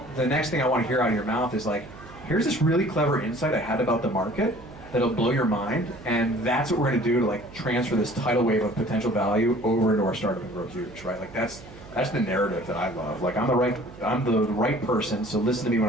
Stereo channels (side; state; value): right; noise; hum, 18 dB below the sound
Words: the next thing I want to hear out of your mouth is here's this really clever insight I had about the market that'll blow your mind, and that's what we're going to do to transfer this tidal wave of potential value over into our startup and grow huge, right? That's the narrative that I love. I'm the right person, so listen to me when